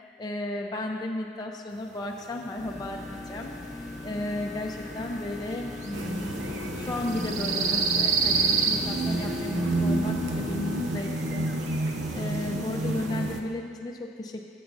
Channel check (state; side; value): normal; both; correlation 0.49